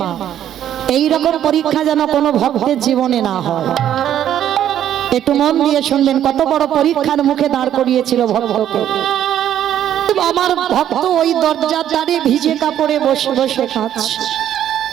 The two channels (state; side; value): quieter; left; 10.8 dB